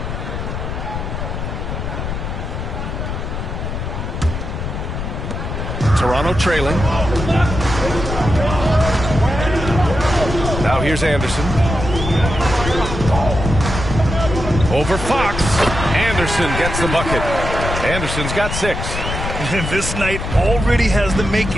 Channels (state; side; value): noise; left; rumble, 5 dB below the sound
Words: Toronto trailing. Now here's Anderson. Over Fox. Anderson gets the bucket. Anderson's got 6. And this night already has the